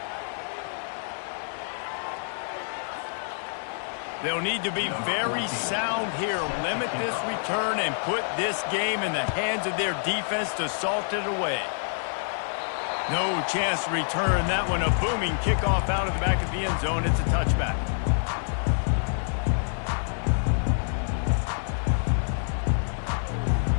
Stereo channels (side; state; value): right; silent; digital silence